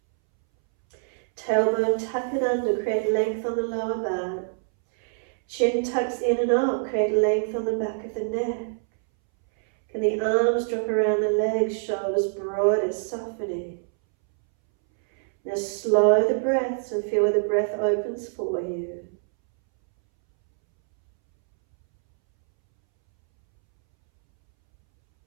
Tailbone, tuck it under, create length on the lower back. Chin tucks in and up, create length on the back of the neck. Can the arms drop around the legs, shoulders broader, softening. Now slow the breaths and feel where the breath opens for you.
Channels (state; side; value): silent; left; 62 dB below the other